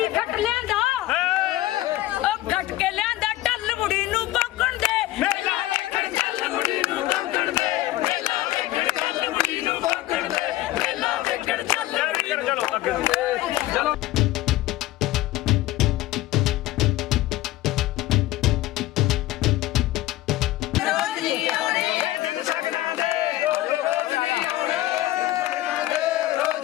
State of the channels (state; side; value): quieter; right; 16.2 dB